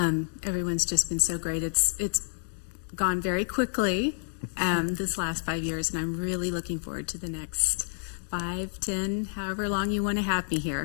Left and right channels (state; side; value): silent; right; digital silence